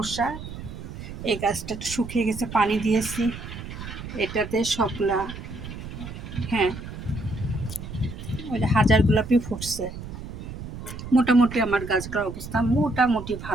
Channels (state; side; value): noise; right; rumble, 10 dB below the sound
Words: এই গাছটা একটু শুকিয়ে গেছে, পানি দিয়েছি। এটাতে সবগুলা, হ্যাঁ, ওই যে হাজার গোলাপি ফুটছে। মোটামুটি আমার গাছগুলোর অবস্থা মোটামুটি